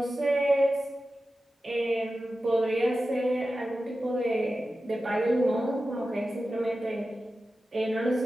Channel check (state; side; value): normal; both; correlation 0.93